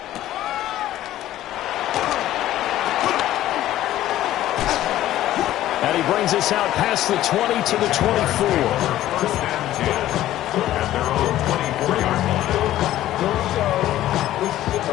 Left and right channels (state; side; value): quieter; right; 13.8 dB